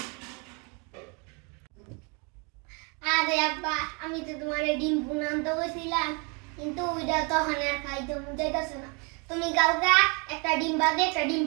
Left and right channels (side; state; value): left; quieter; 32.7 dB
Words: আরে আব্বা আমি তো তোমার ডিম ভুনা আনতে কইছিলাম, কিন্তু ওইটা তো হানে আর খাইতে মন চাইতেছে না। তুমি কালকা একটা ডিম ভাজি একটা ডিম